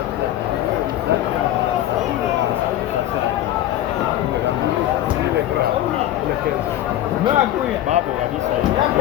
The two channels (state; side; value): quieter; right; 13.0 dB